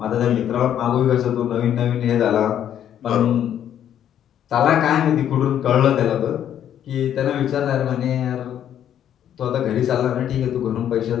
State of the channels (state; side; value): quieter; right; 10.1 dB